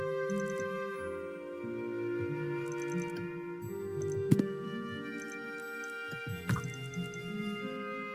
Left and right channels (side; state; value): both; identical; correlation 1.00